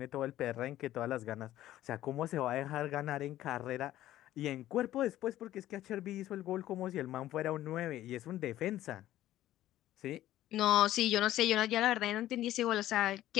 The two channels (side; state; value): right; quieter; 13.9 dB